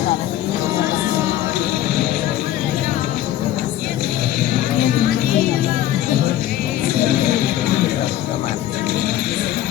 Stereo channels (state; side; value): quieter; right; 12.9 dB